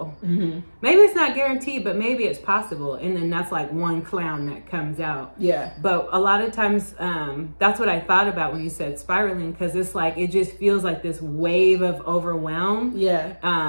Maybe it's not guaranteed, but maybe it's possible. And then that's like one clown that comes out. Yeah. But a lot of times, that's what I thought about when you said spiraling, because it's like, it just feels like this wave of overwhelm. Yeah.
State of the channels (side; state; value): both; inverted; correlation -1.00